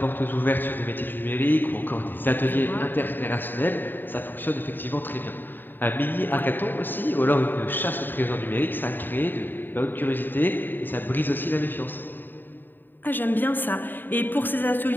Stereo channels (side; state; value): right; late; 0.093 ms